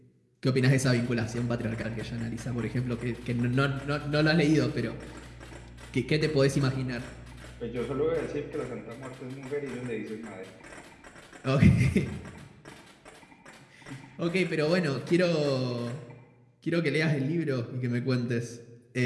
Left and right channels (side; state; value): both; identical; correlation 1.00